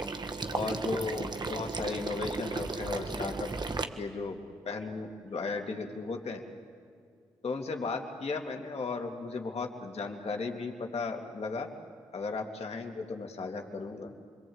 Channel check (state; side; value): normal; both; correlation 0.64